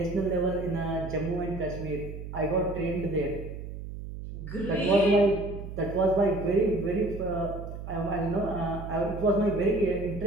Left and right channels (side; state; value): right; noise; hum, 9 dB below the sound